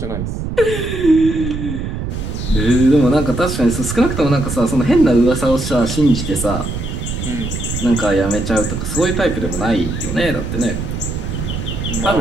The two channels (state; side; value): noise; right; rumble, 5 dB below the sound